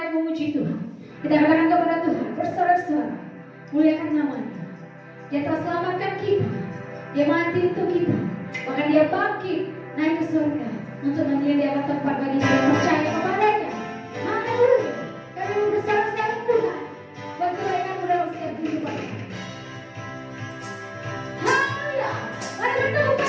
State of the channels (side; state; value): both; identical; correlation 1.00